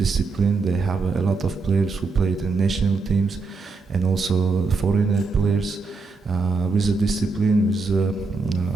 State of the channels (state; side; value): quieter; left; 4.2 dB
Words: They have a lot of players who played in national teams and also foreigner players with the discipline, with